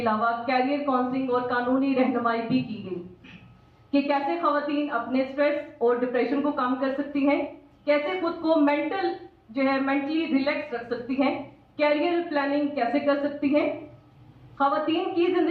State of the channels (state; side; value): identical; both; correlation 1.00